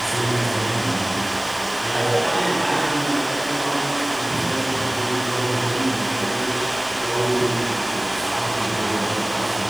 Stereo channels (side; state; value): left; noise; hiss, 18 dB below the sound